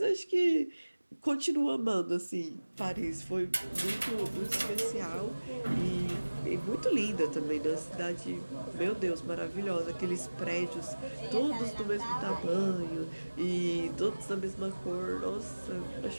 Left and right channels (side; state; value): both; inverted; correlation -1.00